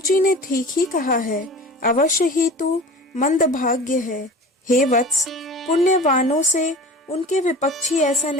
ने ठीक ही कहा है, अवश्य ही तू मंदभाग्य है। हे वत्स, पुण्यवानों से उनके विपक्षी ऐसा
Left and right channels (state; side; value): normal; both; correlation 0.38